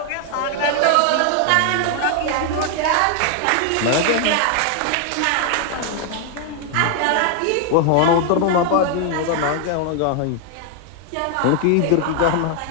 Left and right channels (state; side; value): different; both; correlation 0.00